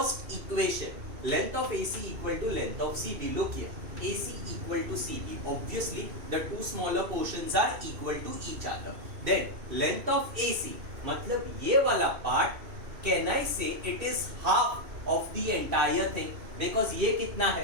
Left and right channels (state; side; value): late; left; 2.6 ms